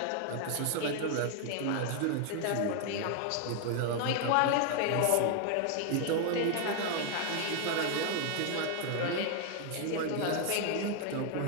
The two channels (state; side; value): different; both; correlation 0.00